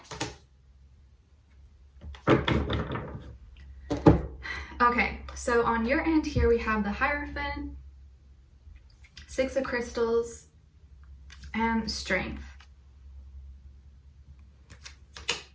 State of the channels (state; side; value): identical; both; correlation 1.00